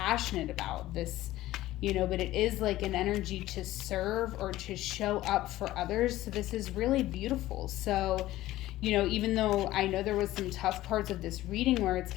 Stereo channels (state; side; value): quieter; right; 15.8 dB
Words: about this, but it is like an energy to serve or to show up for others. So this is really beautiful. So, even though I know there was some tough parts of this reading where it's